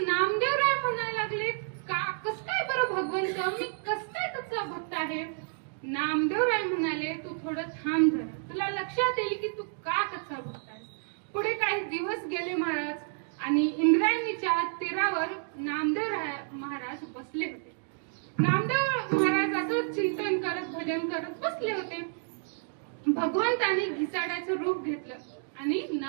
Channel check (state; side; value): silent; left; 58 dB below the other